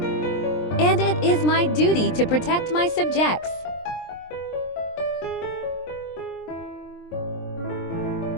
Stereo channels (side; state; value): right; late; 23 ms